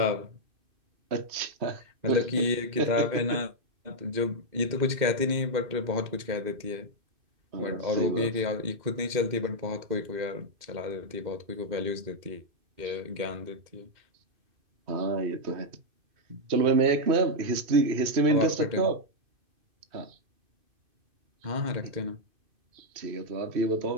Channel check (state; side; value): late; left; 2.6 ms